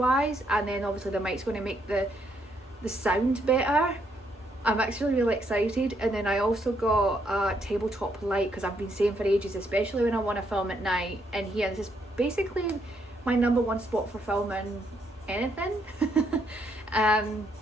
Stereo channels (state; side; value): normal; both; correlation 0.74